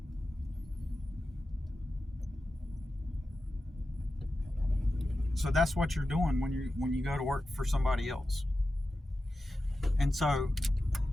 that's what you're doing when you go to work for somebody else. And so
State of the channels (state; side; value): normal; both; correlation 0.92